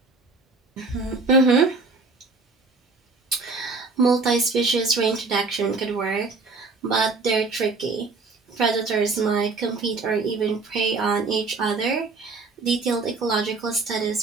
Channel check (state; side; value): quieter; left; 3.9 dB